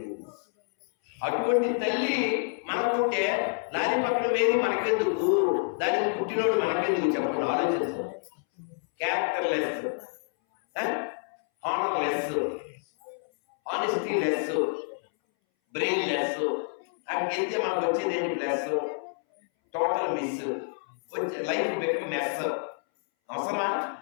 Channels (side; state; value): right; silent; 59 dB below the other